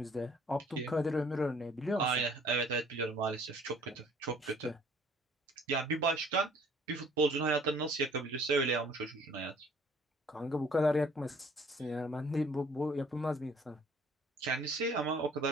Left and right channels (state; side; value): normal; both; correlation 0.56